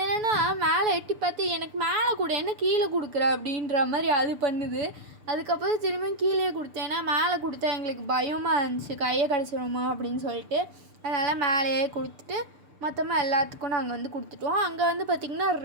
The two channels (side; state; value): left; late; 6.9 ms